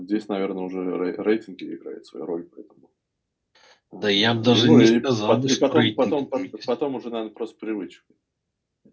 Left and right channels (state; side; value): identical; both; correlation 1.00